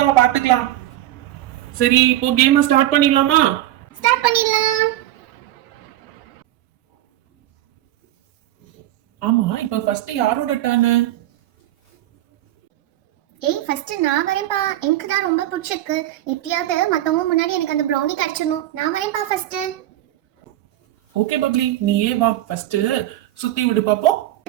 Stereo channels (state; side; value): quieter; left; 14.2 dB